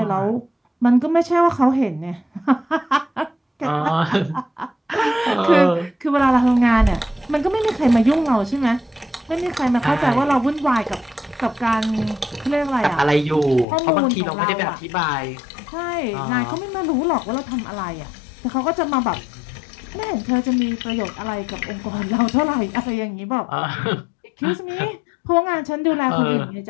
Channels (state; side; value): drops out; right; at 13.7 s